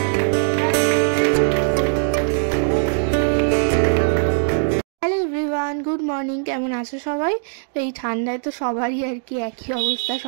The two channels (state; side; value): silent; left; digital silence